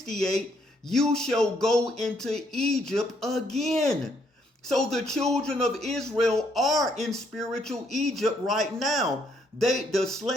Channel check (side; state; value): both; normal; correlation 0.71